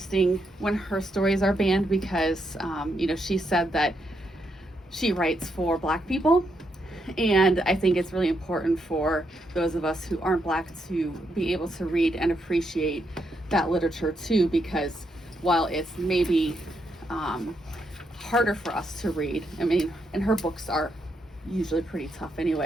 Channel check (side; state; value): both; normal; correlation 0.79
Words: when her stories are banned because, she said that she writes for Black people. And I think it's really important for those of us who aren't Black to be able to read and appreciate that literature too, because while it's maybe harder for us to read, and her books are usually pretty tough